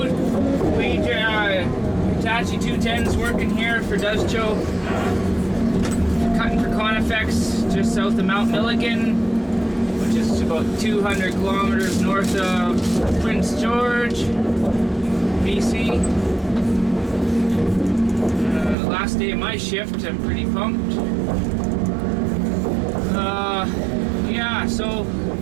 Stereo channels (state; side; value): drops out; left; at 18.8 s